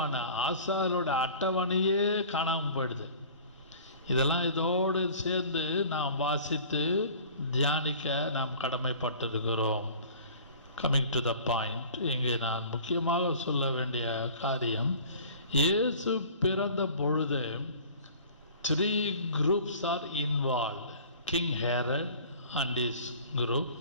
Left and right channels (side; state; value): both; inverted; correlation -0.45